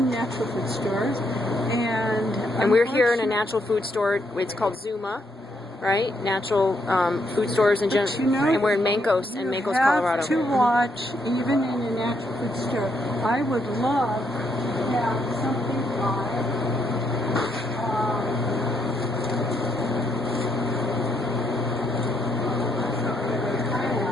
natural food stores, and we're here in a natural food store. It's called Zuma, right? Natural food stores in general, you know, and we're in Mancos, Colorado. You have to watch, even in a natural food store. I would love to have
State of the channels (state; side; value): normal; both; correlation 0.76